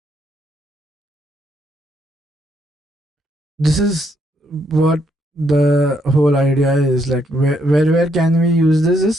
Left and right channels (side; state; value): both; normal; correlation 0.74